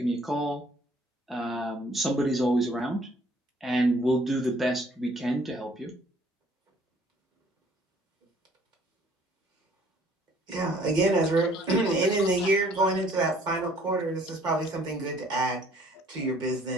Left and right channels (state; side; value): normal; both; correlation 0.58